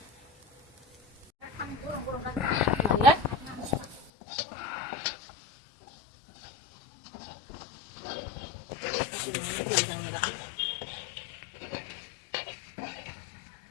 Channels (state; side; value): drops out; right; at 4.1 s